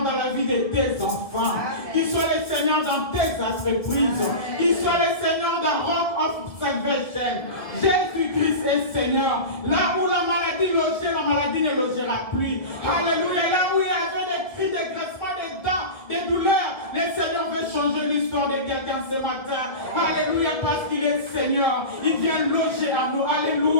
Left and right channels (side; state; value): right; late; 1.9 ms